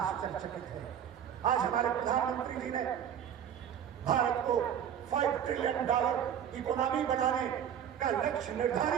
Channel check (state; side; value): quieter; left; 9.2 dB